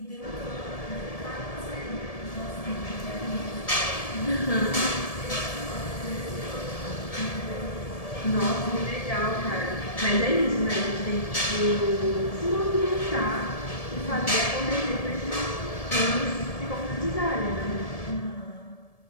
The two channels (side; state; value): right; late; 1.7 ms